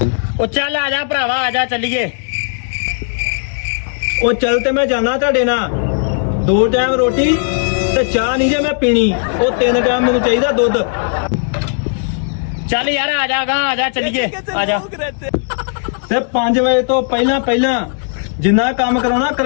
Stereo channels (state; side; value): silent; right; digital silence